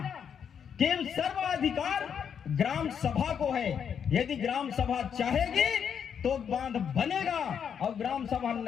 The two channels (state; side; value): quieter; right; 7.7 dB